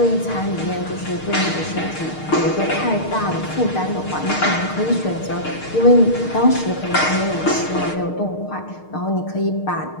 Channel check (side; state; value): right; late; 6.5 ms